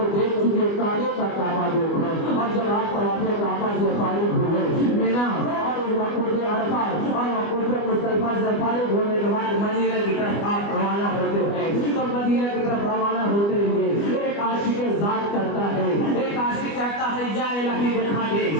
دیکھ چکے کعبے کا کعبہ دیکھو، اور جب آپ طواف کعبہ سے فارغ ہوئے مینا اور وقوف عرفات اور وقوف مزدلفہ سے فارغ ہونے کے بعد مدینہ کی طرف آپ روانہ ہوتے ہیں، تو مدینہ کی طرف روانہ ہوتے ہوئے ایک عاشق ذات کرتا ہے، ایک عاشق کہتا ہے یا الہی دکھا دے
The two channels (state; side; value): late; right; 25 ms